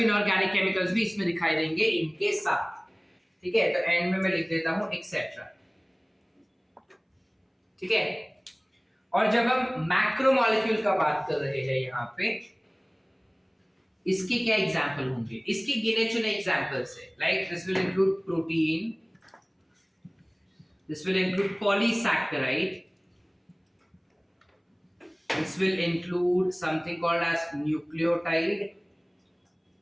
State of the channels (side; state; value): both; identical; correlation 1.00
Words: इनऑर्गेनिक केमिकल्स भी इसमें दिखाई देंगे इनके साथ. ठीक है? तो एंड में मैं लिख देता हूं एक्सेट्रा. ठीक है? और जब हम मैक्रोमोलेक्यूल का बात कर रहे हैं यहाँ पे, इसके क्या एग्जाम्पल होंगे? इसके गिने चुने एग्जाम्पल्स है. Like this will include protein, this will include polysaccharide, this will include something called as nucleotide.